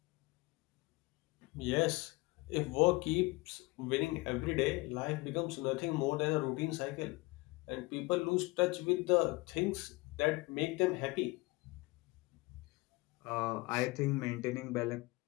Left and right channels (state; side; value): quieter; right; 23.6 dB